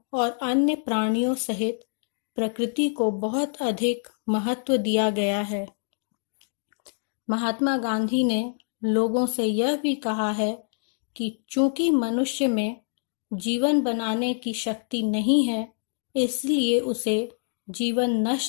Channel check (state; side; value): silent; right; digital silence